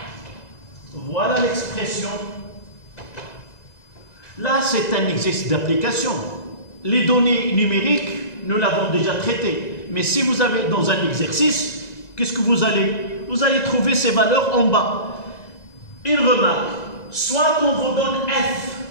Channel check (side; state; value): right; late; 2.0 ms